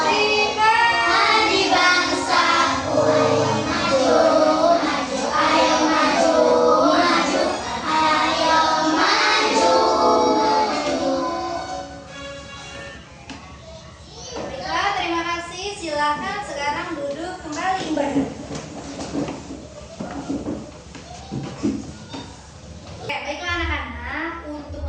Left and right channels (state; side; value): identical; both; correlation 1.00